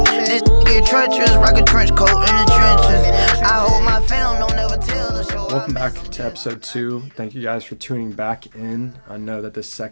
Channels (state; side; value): inverted; both; correlation -1.00